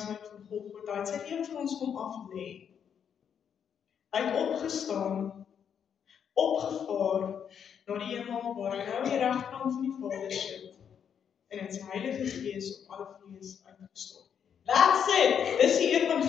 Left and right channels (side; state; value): right; quieter; 8.0 dB